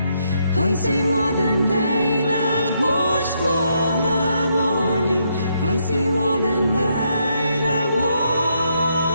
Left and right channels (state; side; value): inverted; both; correlation -0.76